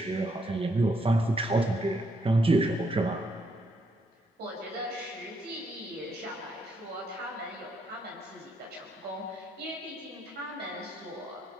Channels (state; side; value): normal; both; correlation 0.75